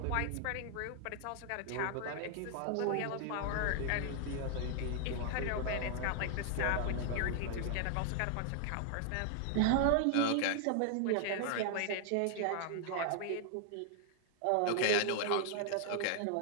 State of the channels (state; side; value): different; both; correlation -0.01